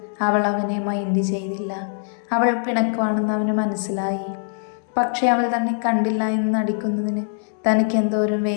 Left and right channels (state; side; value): silent; right; 64 dB below the other